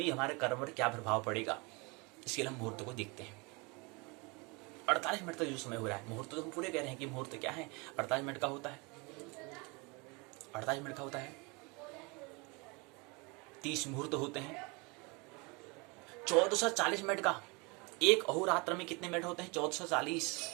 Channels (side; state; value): left; quieter; 28.5 dB